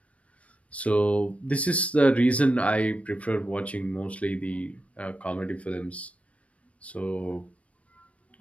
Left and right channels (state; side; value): late; right; 0.064 ms